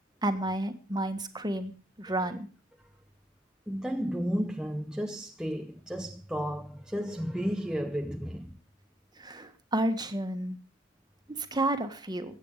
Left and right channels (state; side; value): normal; both; correlation 0.75